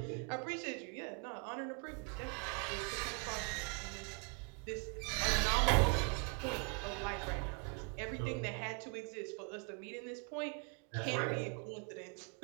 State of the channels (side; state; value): left; quieter; 34.4 dB